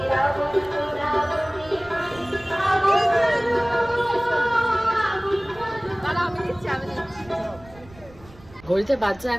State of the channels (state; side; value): noise; right; rumble, 22 dB below the sound